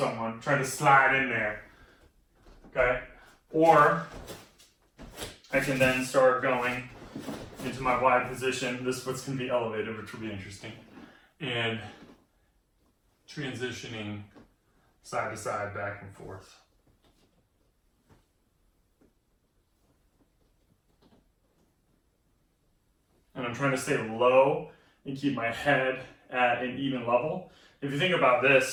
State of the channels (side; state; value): both; identical; correlation 1.00